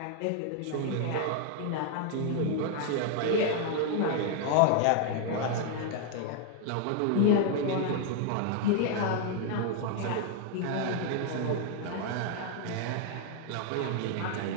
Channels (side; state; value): both; different; correlation 0.00